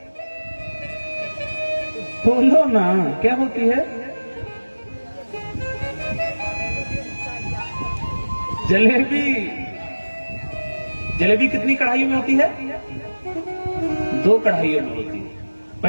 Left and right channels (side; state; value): both; inverted; correlation -1.00